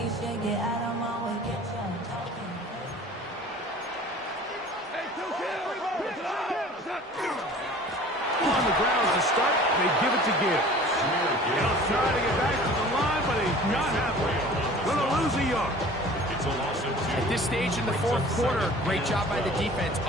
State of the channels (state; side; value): normal; both; correlation 0.45